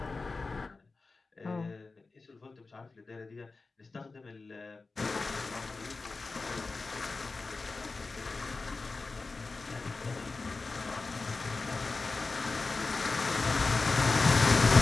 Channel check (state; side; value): quieter; right; 3.8 dB